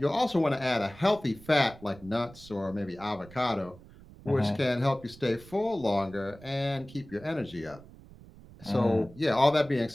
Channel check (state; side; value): noise; right; rumble, 20 dB below the sound